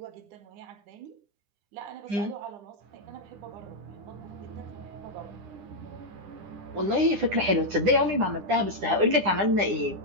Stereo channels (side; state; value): left; late; 10 ms